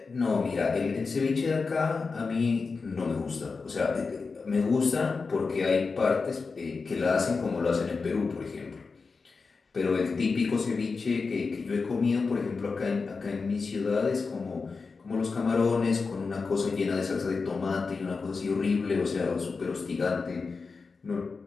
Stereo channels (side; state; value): right; quieter; 4.5 dB